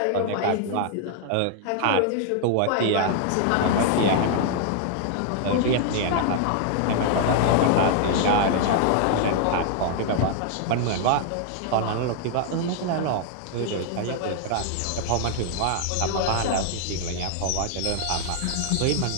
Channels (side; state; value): both; different; correlation -0.01